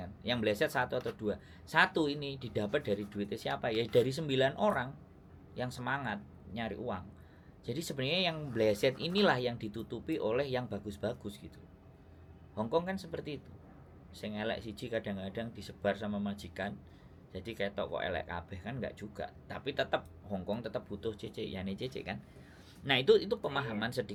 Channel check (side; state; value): both; identical; correlation 1.00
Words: Yang bleset 1 atau 2. 1 ini didapat dari duitnya siapa? Ya dari 9 orang yang semangat nyari uang. Jadi sebenarnya yang bleset inilah yang ditutupi oleh yang bagus-bagus gitu. Hongkong kan seperti itu. Sing elek siji kadang-kadang disebar sama majikan. Jadi kayak toko elek kabeh kan enggak juga. Tapi tetap Hongkong tetap butuh CC, ya nih CC kan. Nah, itu pemahaman